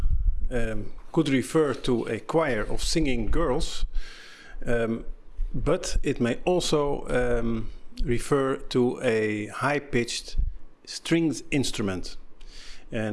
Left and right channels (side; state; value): both; identical; correlation 1.00